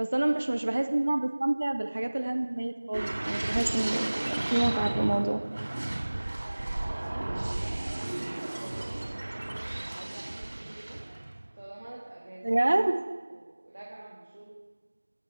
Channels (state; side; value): inverted; both; correlation -1.00